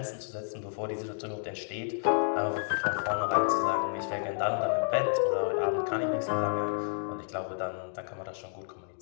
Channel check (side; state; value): right; silent; digital silence